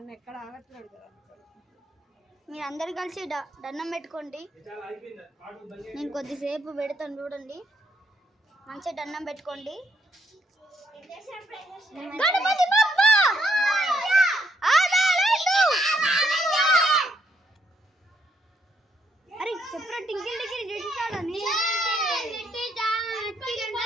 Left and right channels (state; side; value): normal; both; correlation 0.73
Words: ఎక్కడ ఆగట్లేదు కదా మీరు అందరు కలిసి దండం పెట్టుకోండి. నేను కొద్దిసేపు పెడతాను చూడండి. మంచిగా దండం పెట్టుకోండి. గణపతి బప్ప అరే చెప్పరా టింకిల్ టింకిల్ చేసేసాడని